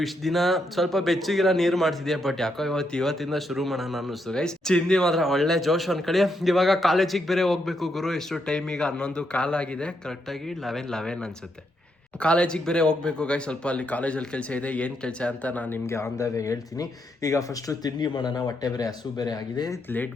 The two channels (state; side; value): normal; both; correlation 0.79